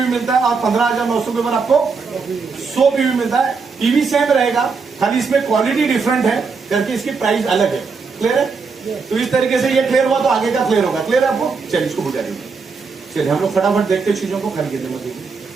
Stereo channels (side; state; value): left; quieter; 4.9 dB